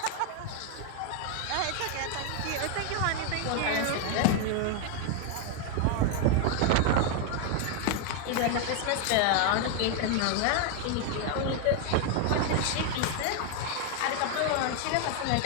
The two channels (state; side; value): different; both; correlation 0.00